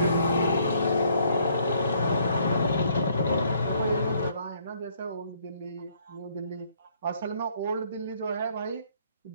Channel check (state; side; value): inverted; both; correlation -0.65